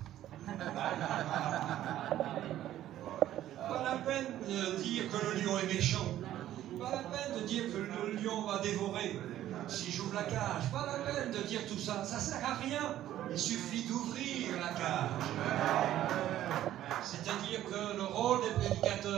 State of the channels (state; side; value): quieter; left; 12.8 dB